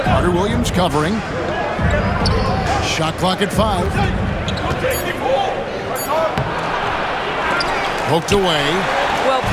Carter-Williams covering. Shot clock at 5. Poked away. Well,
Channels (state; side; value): identical; both; correlation 1.00